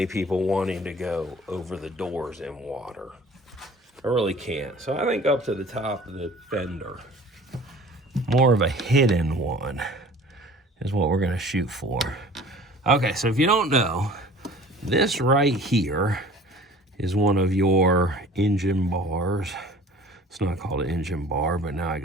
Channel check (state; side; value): normal; both; correlation 0.47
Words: people wanting to go over the doors in water. I really can't. So I think up to the top of the fender. More of a hidden one is what we're gonna shoot for. Okay, so if you don't know, this right here is one of your engine bars. It's not called an engine bar, but now I